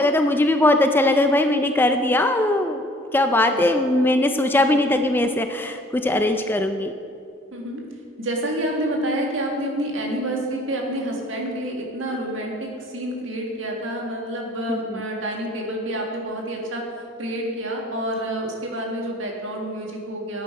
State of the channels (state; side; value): normal; both; correlation 0.54